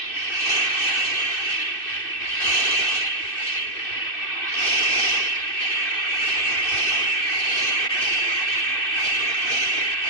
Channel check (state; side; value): late; right; 2.6 ms